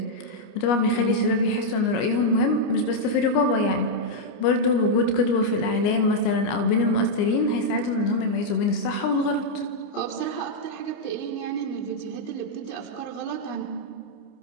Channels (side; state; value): right; late; 29 ms